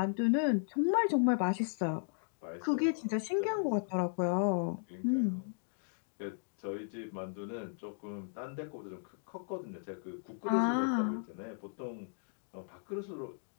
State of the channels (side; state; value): right; silent; digital silence